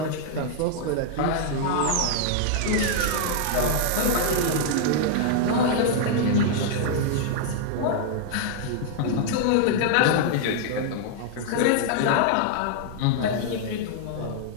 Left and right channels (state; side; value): different; both; correlation -0.01